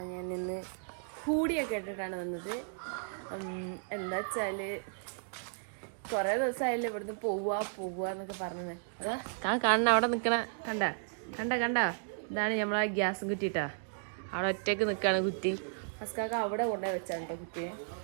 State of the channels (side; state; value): left; silent; digital silence